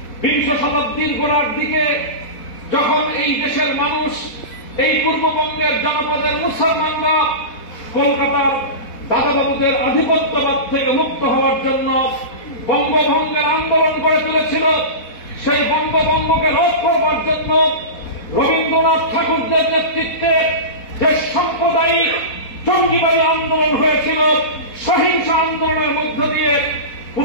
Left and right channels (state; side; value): late; right; 4.1 ms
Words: গোড়ার দিকে যখন এই দেশের মানুষ এই পূর্ববঙ্গের জনপদের মুসলমানরা কলকাতার দাদাবাবুদের আধিপত্যবাদ থেকে মুক্ত হওয়ার জন্য বঙ্গভঙ্গের আন্দোলন গড়ে তুলেছিল, সেই বঙ্গভঙ্গকে রোধ করবার জন্য রবীন্দ্রনাথ ঠাকুরদের নেতৃত্বে যে সাম্প্রদায়িক জঙ্গিবাদী আন্দোলন হয়েছিল, সহিংস আন্দোলনের মধ্য দিয়ে